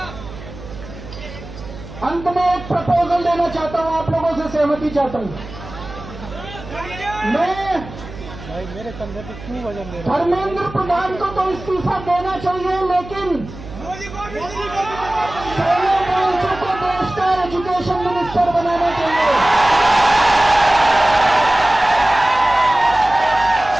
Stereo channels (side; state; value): right; noise; hum, 14 dB below the sound